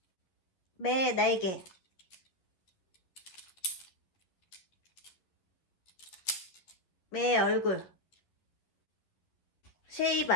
매 날개, 매 얼굴.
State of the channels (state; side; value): late; right; 11 ms